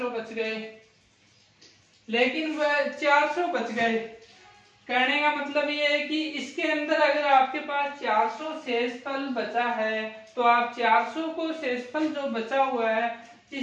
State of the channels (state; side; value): identical; both; correlation 1.00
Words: बच गए, लेकिन वह 400 बच गए। कहने का मतलब ये है कि इसके अंदर अगर आपके पास 400 शेषफल बचा है तो आप 400 को शेषफल जो बचा हुआ है,